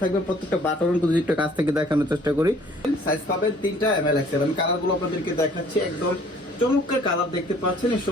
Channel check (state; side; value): normal; both; correlation 0.56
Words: প্রত্যেকটা বাটন যদি একটু কাছ থেকে দেখানোর চেষ্টা করি, সাইজ পাবেন 3টা ml XL। আমি কালারগুলো আপনাদেরকে দেখাচ্ছি, একদম চমৎকার কালার দেখতে পাচ্ছেন। এই